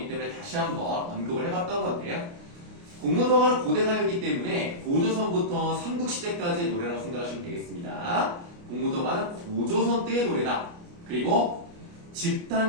때문에 다시 한번 언급을 해봤던 건데요. 공무도화는 고대 가요이기 때문에 고조선부터 삼국시대까지의 노래라고 생각하시면 되겠습니다. 공무도화는 고조선 때의 노래다. 그리고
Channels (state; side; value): late; left; 29 ms